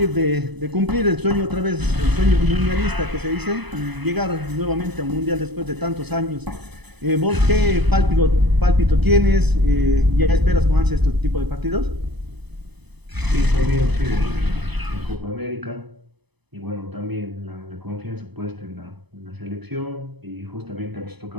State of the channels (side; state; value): left; late; 0.99 ms